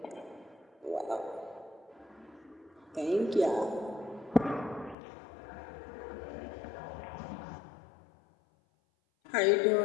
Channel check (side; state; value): right; drops out; at 5.0 s